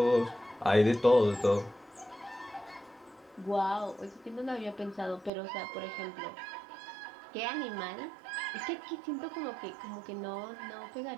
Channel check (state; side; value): drops out; left; at 5.3 s